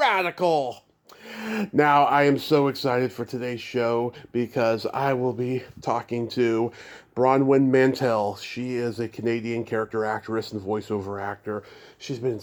Now, I am so excited for today's show because I will be talking to Bronwen Mantel. She is a Canadian character actress and voiceover actor. She's been in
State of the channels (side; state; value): both; identical; correlation 1.00